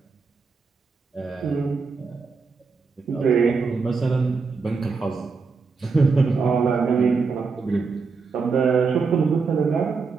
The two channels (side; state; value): left; quieter; 4.7 dB